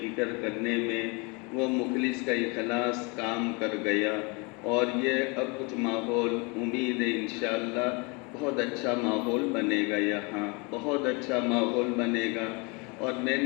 فکر کرنے میں، وہ مخلص کا اخلاص کام کر گیا، اور یہ اب کچھ ماحول امید ہے انشاءاللہ بہت اچھا ماحول بنے گا، یہاں بہت اچھا ماحول بنے گا۔ اور میں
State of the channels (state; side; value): quieter; right; 29.7 dB